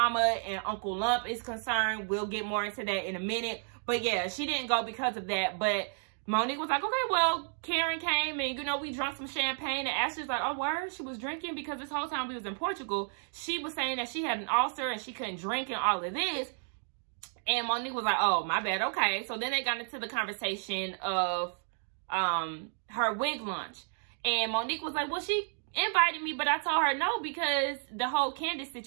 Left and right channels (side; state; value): left; silent; 56 dB below the other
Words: and Uncle Lump is concerned. We'll get more into that in a minute. But, yeah, she didn't go because of that. But Monique was like, okay, well, Karen came and, you know, we drank some champagne. And Ashley's like, oh, word? She was drinking because this whole time we was in Portugal, she was saying that she had an ulcer and she couldn't drink and all of this. And Monique was like, oh, my bad. Okay. So then they got into the conversation of her wig launch. And Monique was like, well, she invited me, but I told her no because the whole Candace